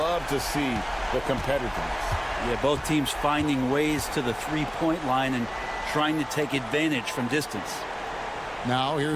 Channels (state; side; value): identical; both; correlation 1.00